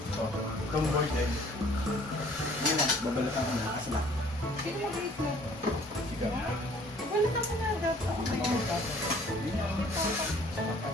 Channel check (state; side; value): normal; both; correlation 0.55